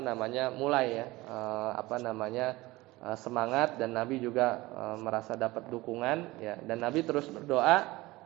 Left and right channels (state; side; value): quieter; left; 20.0 dB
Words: mulai, ya, semangat, dan Nabi juga merasa dapat dukungan, ya, dan Nabi terus berdoa,